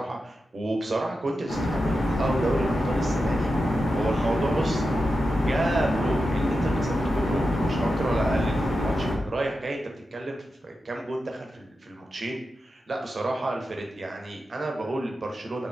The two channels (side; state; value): both; normal; correlation 0.90